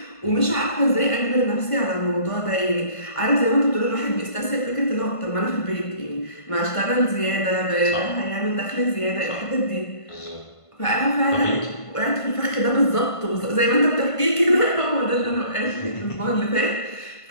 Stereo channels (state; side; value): late; right; 1.5 ms